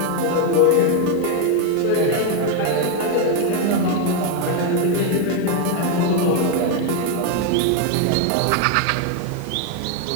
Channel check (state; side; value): different; both; correlation 0.01